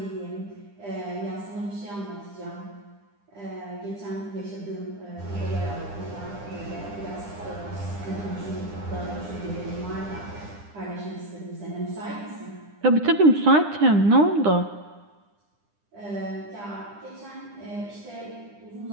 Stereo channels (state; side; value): late; left; 9.9 ms